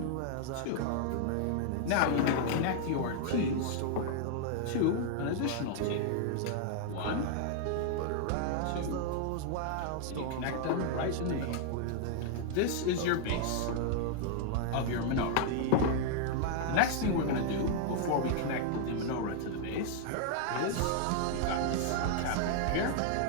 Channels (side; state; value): both; different; correlation 0.00